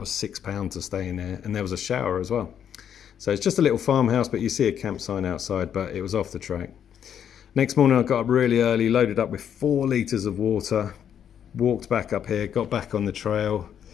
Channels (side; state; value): right; quieter; 8.9 dB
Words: £6 to stay in there. And there was a shower as well. So it's just a little farmhouse, but you see a camp sign outside, but it was off the track. Next morning I got up really early, loaded up with 4 litres of water, walked back up here, got back on the trail,